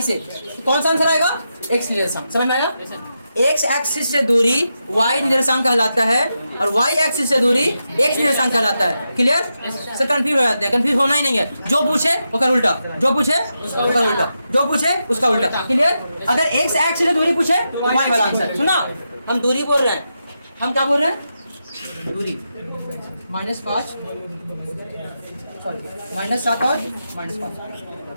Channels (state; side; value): inverted; both; correlation -0.87